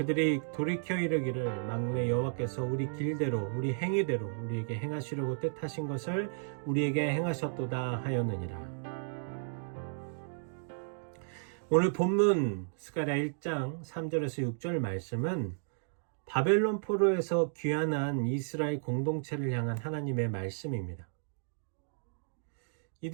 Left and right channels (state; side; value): silent; left; digital silence